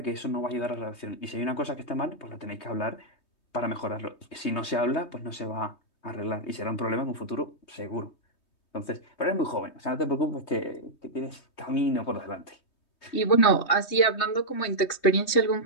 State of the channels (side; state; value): right; late; 3.2 ms